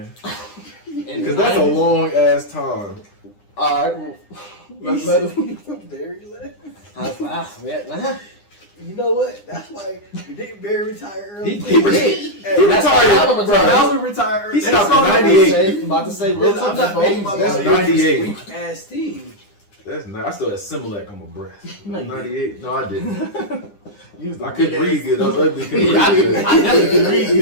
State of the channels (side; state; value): right; late; 9.9 ms